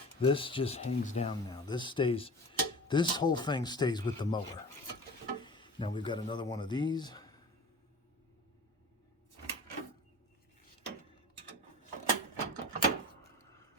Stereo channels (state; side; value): normal; both; correlation 0.37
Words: This just hangs down now. This whole thing stays with the mower. Now we've got another one of these.